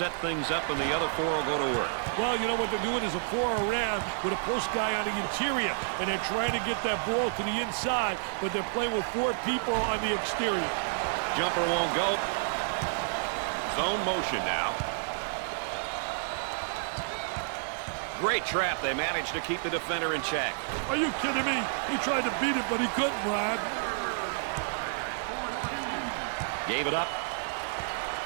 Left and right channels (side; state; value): left; silent; 58 dB below the other